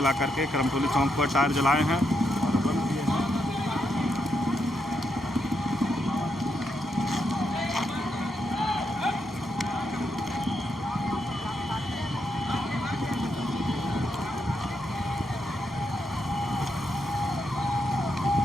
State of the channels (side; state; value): both; normal; correlation 0.81